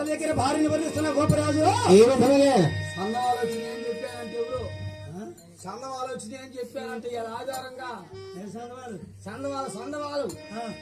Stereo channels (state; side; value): identical; both; correlation 1.00